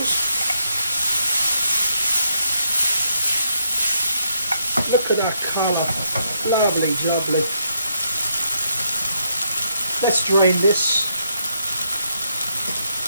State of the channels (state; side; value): inverted; both; correlation -0.76